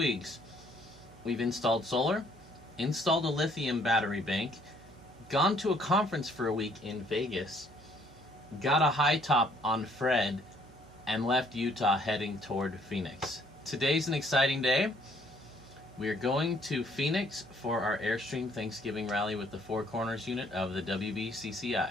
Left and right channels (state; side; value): noise; right; hum, 24 dB below the sound